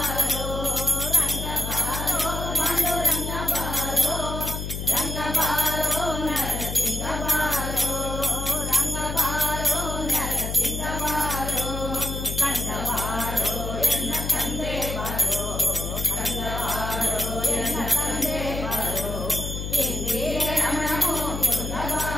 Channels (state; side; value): noise; left; hum, 4 dB below the sound